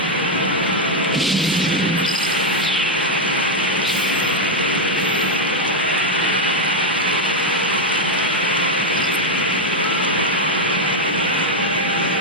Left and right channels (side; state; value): both; normal; correlation 0.02